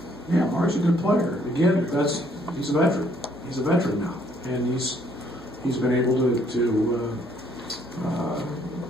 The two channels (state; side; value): normal; both; correlation 0.65